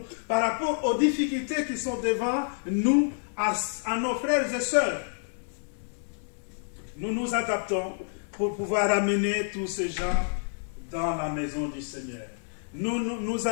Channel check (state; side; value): silent; right; digital silence